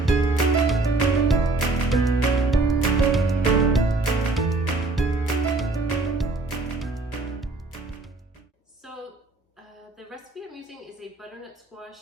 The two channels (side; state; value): left; quieter; 3.1 dB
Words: So the recipe I'm using is a butternut